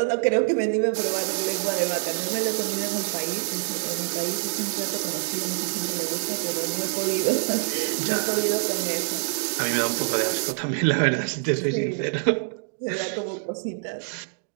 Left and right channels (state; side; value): silent; left; 61 dB below the other